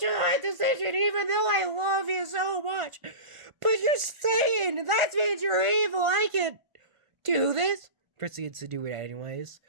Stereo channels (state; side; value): late; left; 1.5 ms